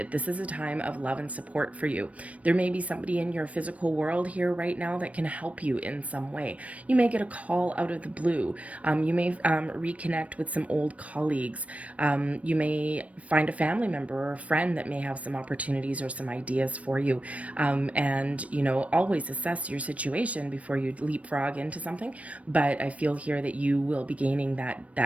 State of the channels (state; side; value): late; left; 0.065 ms